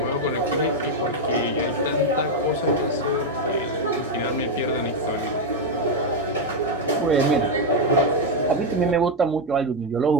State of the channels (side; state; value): both; normal; correlation 0.03